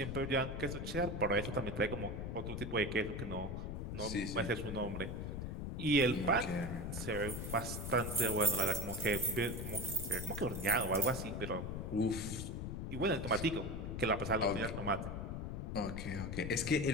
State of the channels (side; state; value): left; noise; rumble, 4 dB below the sound